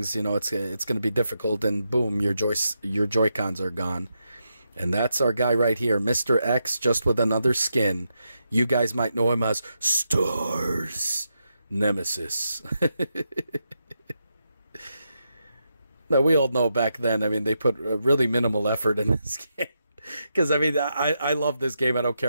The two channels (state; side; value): inverted; both; correlation -0.85